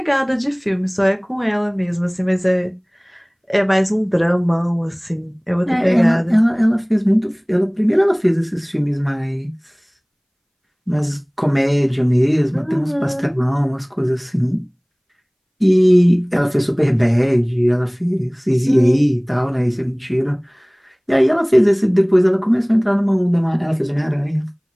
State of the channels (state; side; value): identical; both; correlation 1.00